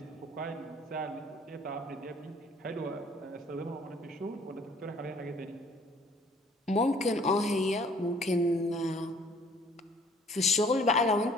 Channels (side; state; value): both; normal; correlation 0.57